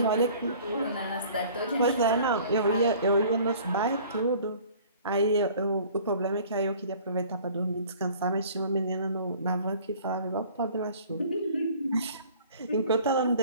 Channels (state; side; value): inverted; both; correlation -0.50